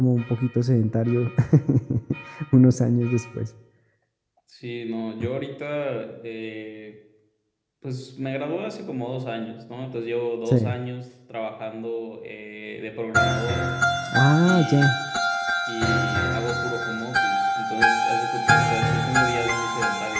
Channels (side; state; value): both; identical; correlation 1.00